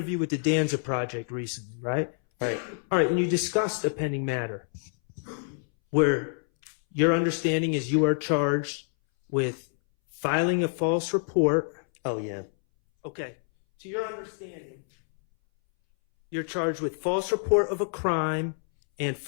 with the Danza Project recently, right? Right. All right, and you discussed a pending matter where your understanding is you are charged with filing a false report. Oh, yeah. Okay. To your understanding, you're charged with false report of a crime and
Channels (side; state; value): right; silent; 60 dB below the other